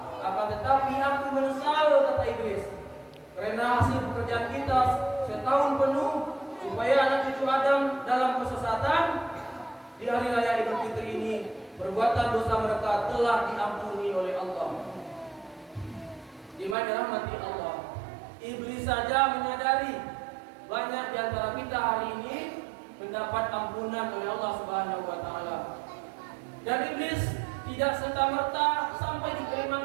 akan tetapi aku menyesal," kata iblis, "karena hasil pekerjaan kita setahun penuh supaya anak cucu Adam dalam kesesatan. Di hari raya Idul Fitri ini perbuatan dosa mereka telah diampuni oleh Allah." Di mana rahmati Allah, iblis saja menyadari banyak di antara kita hari ini mendapat ampunan oleh Allah Subhanahu wa taala. Dan iblis tidak serta-merta sampai di kalimat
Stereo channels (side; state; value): left; drops out; at 16.8 s